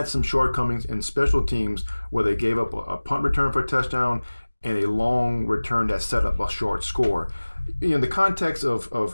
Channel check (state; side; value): inverted; both; correlation -1.00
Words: some shortcomings in special teams where they gave up a punt return for a touchdown and a long return that set up a short score. In the context of